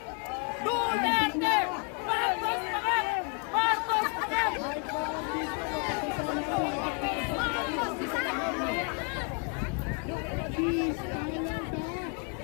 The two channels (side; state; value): right; quieter; 35.7 dB